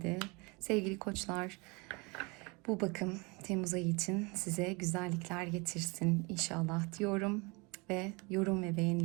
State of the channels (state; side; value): quieter; left; 28.2 dB